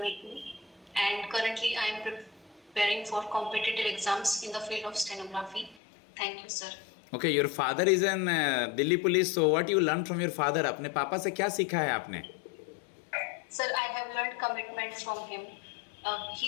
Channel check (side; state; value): right; drops out; at 5.8 s